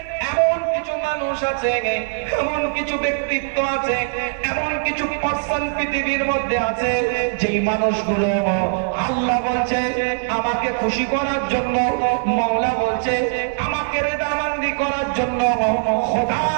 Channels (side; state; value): left; silent; digital silence